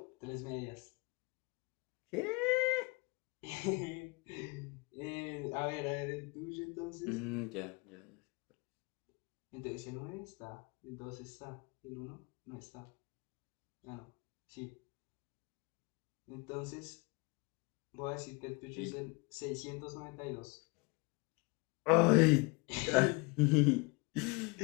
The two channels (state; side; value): quieter; right; 28.6 dB